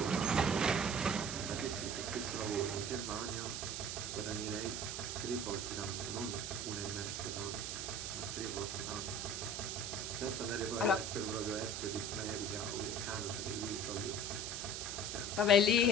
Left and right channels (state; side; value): noise; right; hiss, 4 dB below the sound